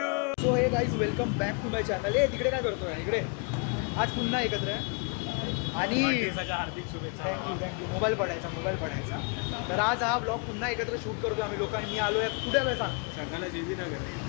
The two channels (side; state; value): right; quieter; 35.3 dB